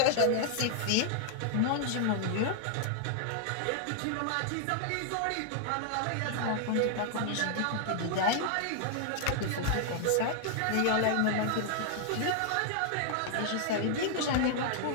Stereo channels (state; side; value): different; both; correlation 0.00